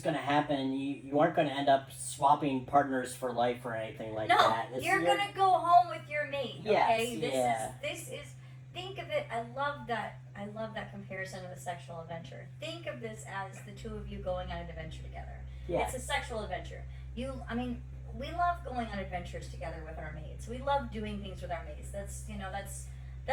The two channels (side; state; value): both; identical; correlation 1.00